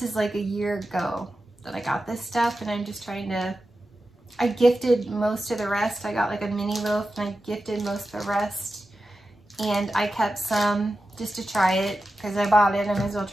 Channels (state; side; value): normal; both; correlation 0.92